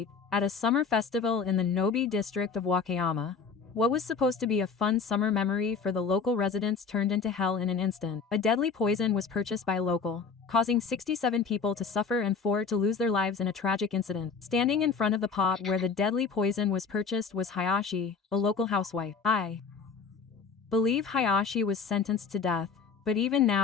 at a summer festival in the Nobi district of Wakayama, what was supposed to be a fun summer memory for the local residents turned into hell in an instant. A deadly poison was purchased by a local, causing 67 people to suffer and 4 to lose their lives in a tragic incident. Standing in front of the pot where the deadly poison was purchased was Hayashi, a local housewife. I believe Hayashi was sentenced to death, but even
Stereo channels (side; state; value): right; quieter; 5.4 dB